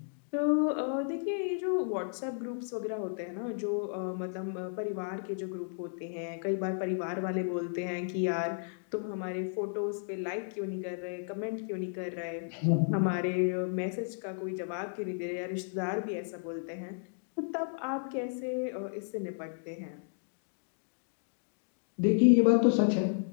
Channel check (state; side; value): silent; right; digital silence